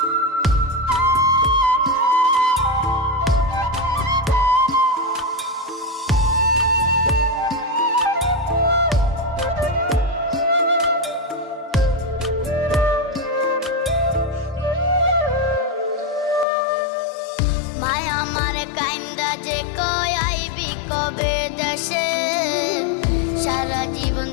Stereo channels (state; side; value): drops out; right; at 16.4 s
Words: মায়া মারে কাইন্দা যে কয় আইবি কবে দেশে, সারা জীবন